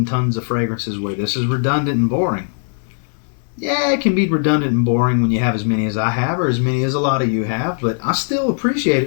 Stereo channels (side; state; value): right; silent; digital silence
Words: tons of fragrances where this is redundant and boring. Yeah, it can be redundant and boring when you have as many as I have or as many as a lot of you have, but I still appreciate